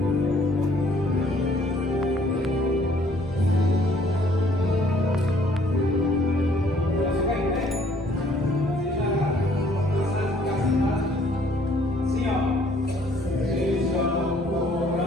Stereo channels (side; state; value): both; normal; correlation 0.61